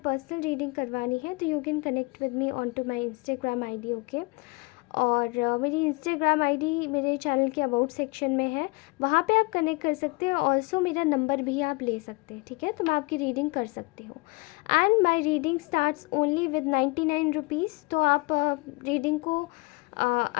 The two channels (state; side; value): quieter; right; 26.9 dB